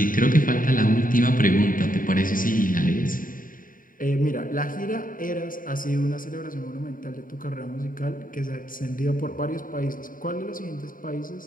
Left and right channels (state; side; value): late; right; 0.40 ms